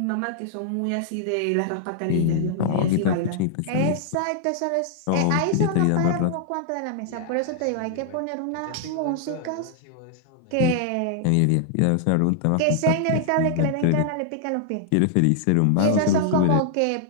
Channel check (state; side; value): different; both; correlation -0.01